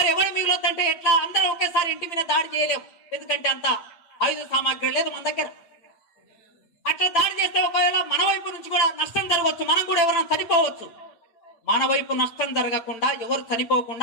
ఎవడు మిగులొద్దంటే ఎట్లా? అందరూ ఒకేసారి ఇంటి మీద దాడి చేయలేము, ఎందుకంటే అంత ఆయుధ సామాగ్రి లేదు మన దగ్గర. అట్లా దాడి చేస్తే ఒకవేళ మన వైపు నుంచి కూడా నష్టం జరగవచ్చు, మనం కూడా ఎవరైనా చనిపోవచ్చు. మన వైపు నష్టం జరగకుండా, ఎవరు చనిపోకుండా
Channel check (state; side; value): late; right; 8.6 ms